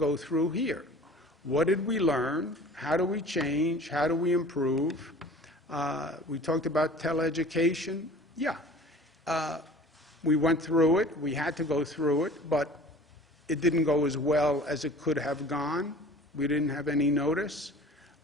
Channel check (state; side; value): normal; both; correlation 0.44